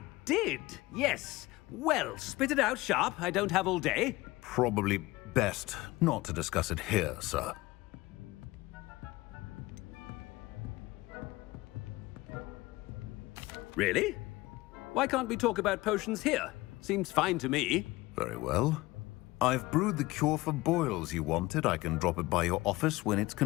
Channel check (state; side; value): quieter; right; 20.1 dB